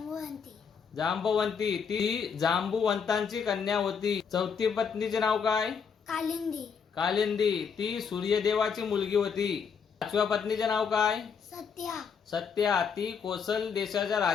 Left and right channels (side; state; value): right; quieter; 6.4 dB